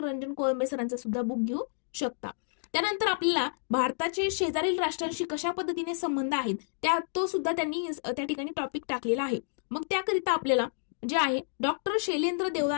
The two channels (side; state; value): right; silent; digital silence